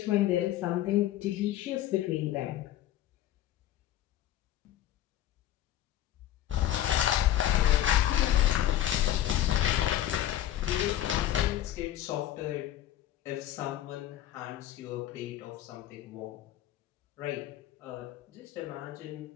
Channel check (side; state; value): right; quieter; 12.6 dB